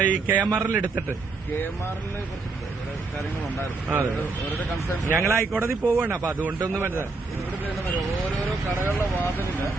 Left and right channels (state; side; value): quieter; left; 3.8 dB